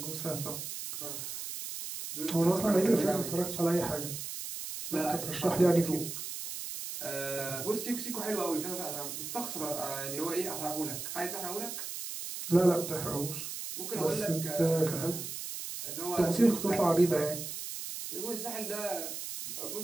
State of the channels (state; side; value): noise; right; hiss, 7 dB below the sound